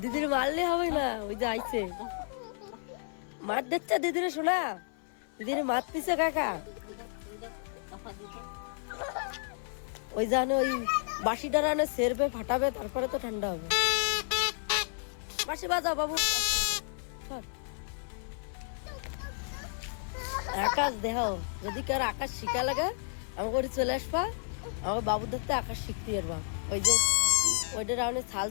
দিদির মারলে হবে না, ওই যে আইছে মার দিচ্ছে দিদির, শোনা দিদির মারতেছে কাকা। ওই জানে ওই বাঁশি ডারানে সেরবে ফাটাবে, তারপরে তো ঠান্ডা হবে। বাঁশি বাজাও বাবু। আকাশ দেহ, যদি কার আকাশ শিখা লাগে আমাকে ওটি চলে আসবা, আমার বাবুর ধরতে আকাশ শিখতে পারবা। ওই যে ওইটা রাউনে ছাল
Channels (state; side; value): silent; right; 57 dB below the other